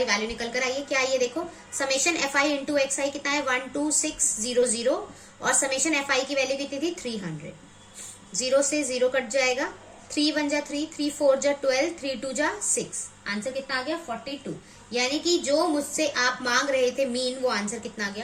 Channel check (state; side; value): identical; both; correlation 1.00